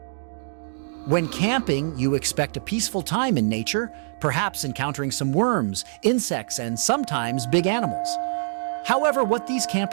When camping, you expect a peaceful time in nature, perhaps encountering some worms, insects, and sometimes big animals. However, what these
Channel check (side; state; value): left; silent; 62 dB below the other